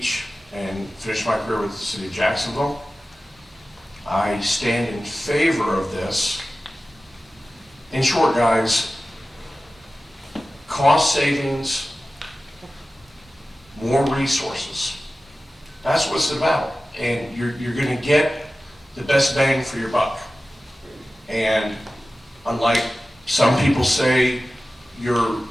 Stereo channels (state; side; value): normal; both; correlation 0.95